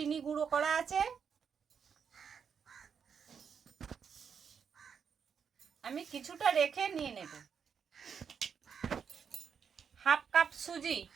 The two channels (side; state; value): left; quieter; 6.9 dB